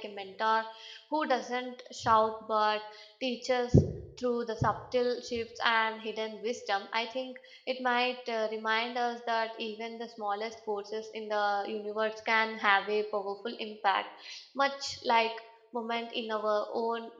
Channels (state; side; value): identical; both; correlation 1.00